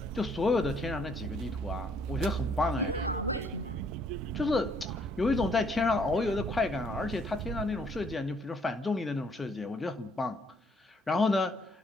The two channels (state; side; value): normal; both; correlation 0.66